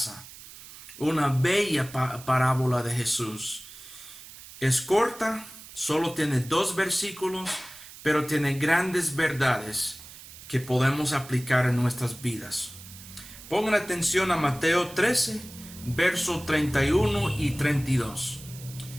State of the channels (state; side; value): noise; right; hiss, 17 dB below the sound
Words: Una bella parábola de Jesús. Es corta, solo tiene 2 versículos, pero tiene grandes verdades que podemos aplicar en nuestras vidas. Pongan atención a Mateo 13, versos 31 y 32.